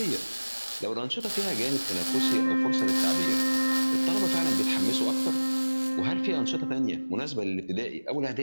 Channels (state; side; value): inverted; both; correlation -1.00